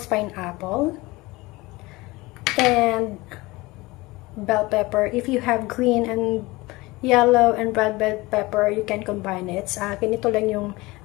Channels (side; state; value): right; quieter; 21.6 dB